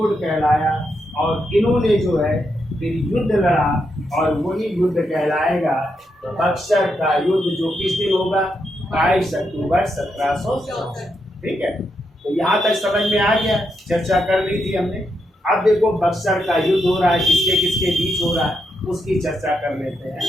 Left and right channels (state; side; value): normal; both; correlation 0.82